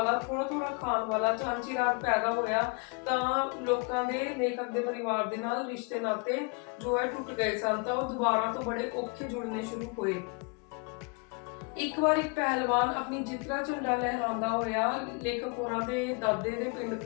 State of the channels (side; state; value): right; quieter; 33.1 dB